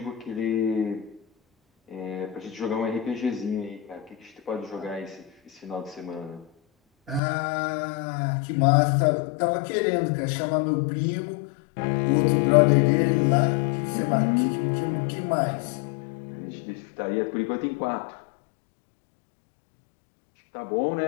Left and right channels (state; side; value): drops out; right; at 7.2 s